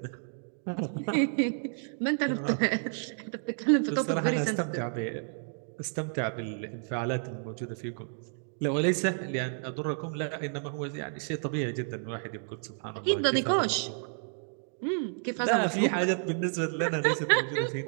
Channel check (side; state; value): left; silent; digital silence